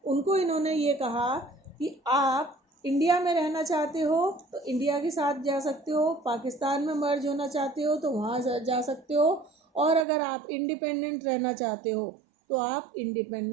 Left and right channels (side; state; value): left; drops out; at 10.1 s